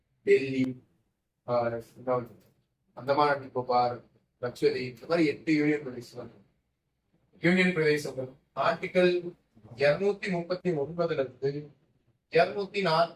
டெல்லி, அந்தமான் நிக்கோபார், லட்சதீப், இந்த மாதிரி 8 யூனியன் பிரதேசம். யூனியன் பிரதேசங்கள் ஆர்டிகல் 239ல இருந்து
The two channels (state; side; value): identical; both; correlation 1.00